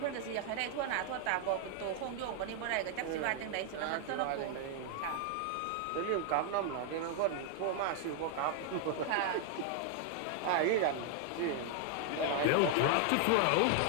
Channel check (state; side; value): different; both; correlation 0.00